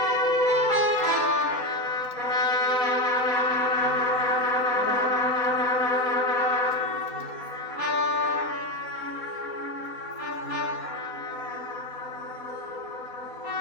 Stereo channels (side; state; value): right; late; 4.2 ms